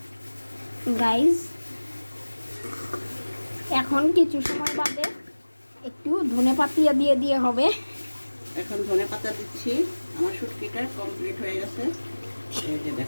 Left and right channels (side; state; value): both; inverted; correlation -1.00